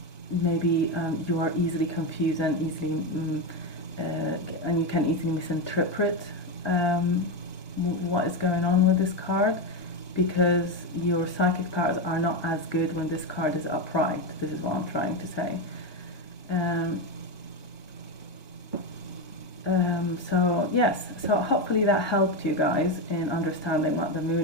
maybe you are easily confused and easily and you can easily misinterpret what is going on with this card, because your psychic powers are not as good when this card is upright. This is what I'm trying to say. So yes, so hopefully that helped you guys in understanding what the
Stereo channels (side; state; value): right; late; 1.2 ms